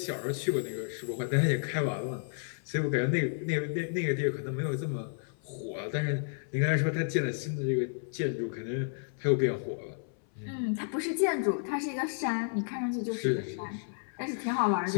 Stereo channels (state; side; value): silent; right; 57 dB below the other